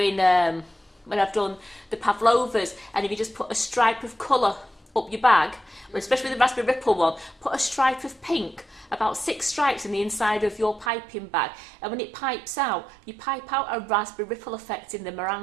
when I've done the pavlovas, and if you just put a stripe of colour up your bag, especially with the raspberry ripple one, put a stripe of pink, about 6 stripes in the inside of your piping bag, and when it pipes out, you pipe out a raspberry ripple effect in the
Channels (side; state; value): left; drops out; at 10.9 s